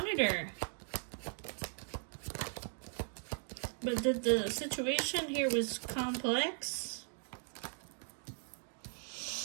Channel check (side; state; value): left; silent; 52 dB below the other